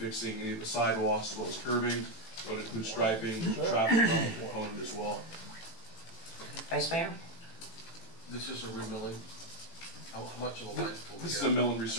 any of the sidewalks as well as curbing. It would include striping, traffic component as well. Vice Mayor? This is a remilling. How much of the life will we This get? is a mill and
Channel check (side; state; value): right; late; 18 ms